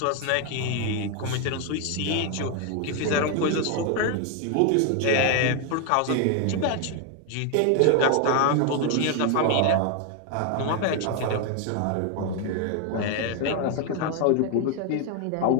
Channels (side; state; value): both; different; correlation 0.01